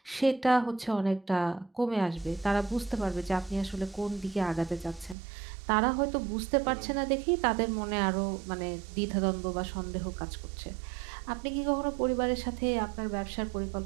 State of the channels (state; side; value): drops out; left; at 5.2 s